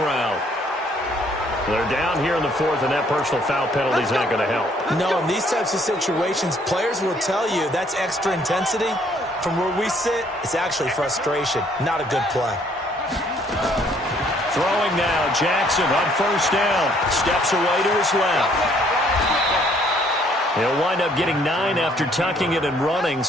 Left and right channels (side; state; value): both; normal; correlation 0.64